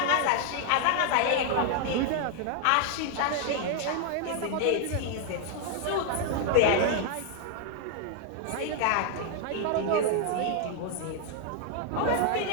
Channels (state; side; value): different; both; correlation 0.00